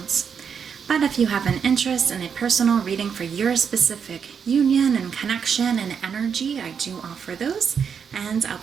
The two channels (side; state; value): left; quieter; 6.9 dB